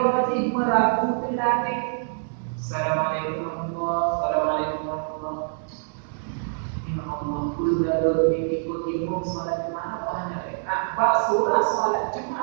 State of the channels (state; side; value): silent; left; digital silence